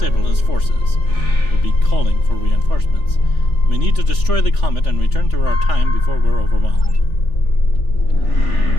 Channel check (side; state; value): right; late; 3.4 ms